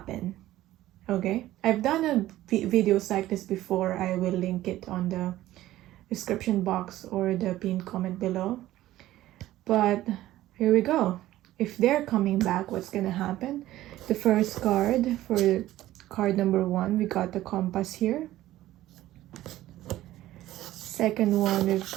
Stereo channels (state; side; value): quieter; left; 14.9 dB